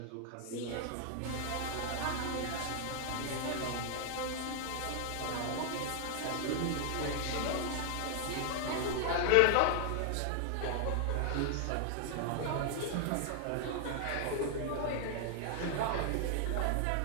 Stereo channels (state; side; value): different; both; correlation 0.00